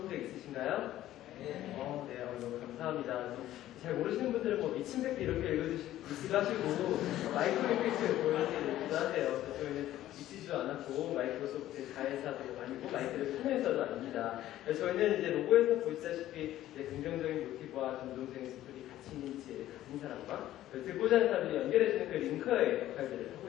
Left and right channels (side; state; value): right; quieter; 13.7 dB